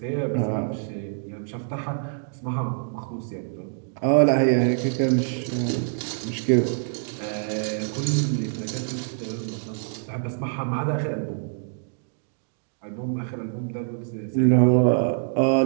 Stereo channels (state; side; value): silent; left; digital silence